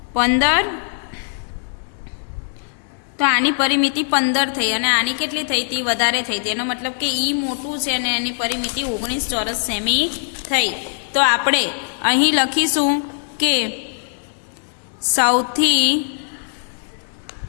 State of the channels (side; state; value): right; silent; digital silence